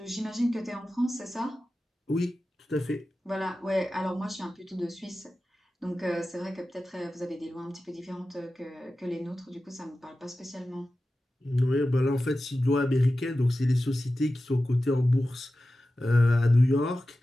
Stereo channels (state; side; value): normal; both; correlation 0.94